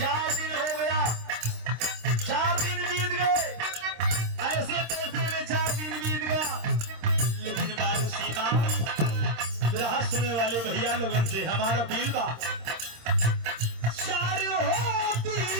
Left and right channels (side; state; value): left; late; 26 ms